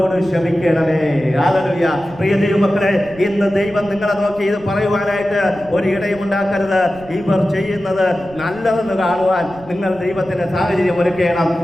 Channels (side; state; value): right; noise; rumble, 21 dB below the sound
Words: ക്ഷമിക്കണമേ. ഹല്ലേലൂയ. പ്രിയ ദൈവമക്കളെ, ഇന്ന് ദൈവം നിങ്ങളെ നോക്കി ഇത് പറയുവാനായിട്ട് ഒരു ഇടയും ഉണ്ടാക്കരുത്. ഇവർ ചെയ്യുന്നത് നല്ലതെന്ന് കാണുവാൻ നിങ്ങൾ ദൈവത്തിന്റെ സാഹചര്യം ഒരുക്കണം.